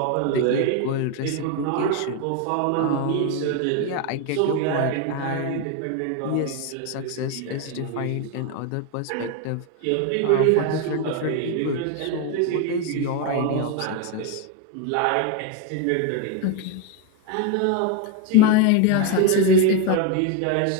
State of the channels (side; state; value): both; different; correlation 0.02